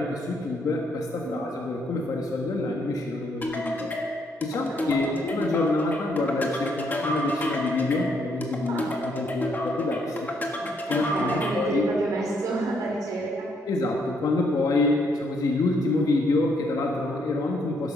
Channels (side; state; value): both; normal; correlation 0.72